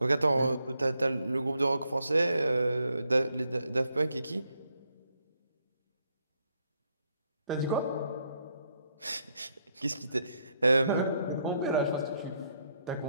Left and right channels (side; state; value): both; inverted; correlation -0.76